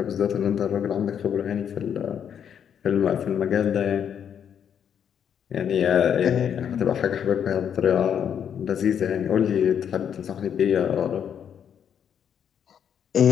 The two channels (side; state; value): right; quieter; 8.4 dB